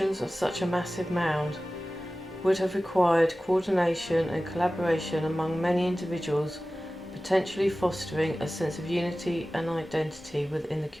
of such a massive mound would have required coordination and collaboration among many individuals, potentially fostering a sense of unity and identity within the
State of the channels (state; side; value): normal; both; correlation 0.96